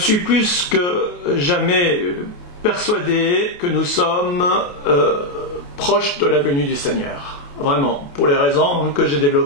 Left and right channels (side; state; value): right; late; 28 ms